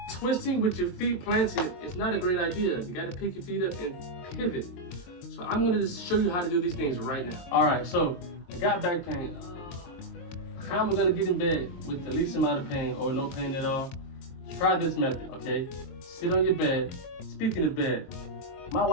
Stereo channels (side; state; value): right; late; 22 ms